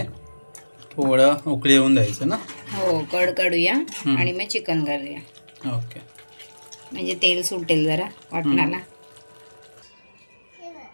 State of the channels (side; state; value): both; inverted; correlation -1.00